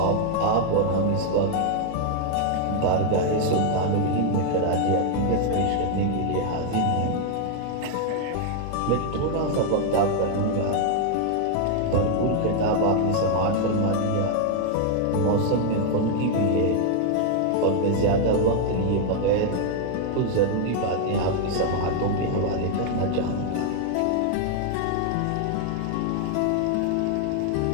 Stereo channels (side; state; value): both; different; correlation 0.00